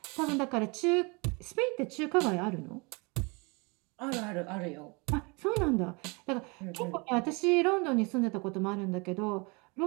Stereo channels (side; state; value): left; quieter; 29.5 dB